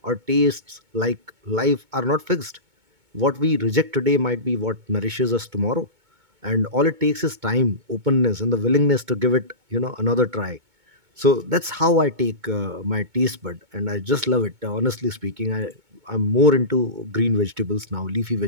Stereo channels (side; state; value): left; late; 2.2 ms